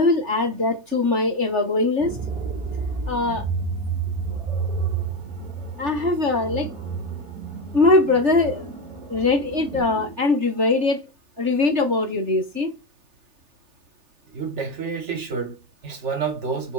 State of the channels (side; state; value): left; late; 3.4 ms